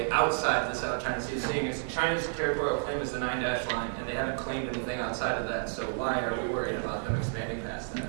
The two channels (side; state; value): left; silent; digital silence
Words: outside the South China Sea, seeing as China's territorial claim is the 9-dash line, and they haven't claimed anything outside of that, so why are we worried about them expanding past that?